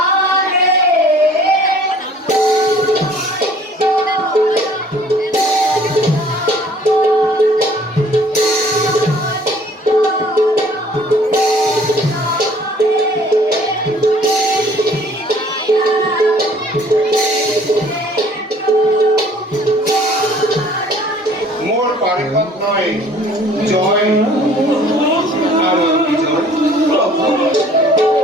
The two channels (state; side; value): normal; both; correlation 0.54